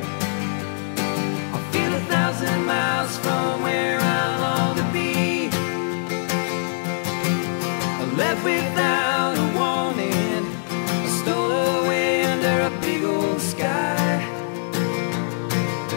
1,000 miles from where I long to be. I left without a warning, I stole away under a big old sky,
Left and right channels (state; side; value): silent; right; digital silence